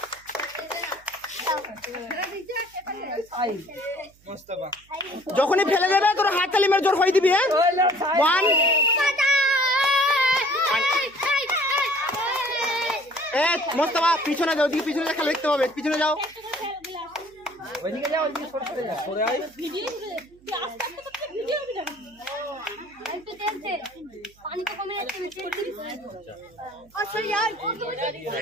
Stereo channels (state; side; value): noise; right; hum, 30 dB below the sound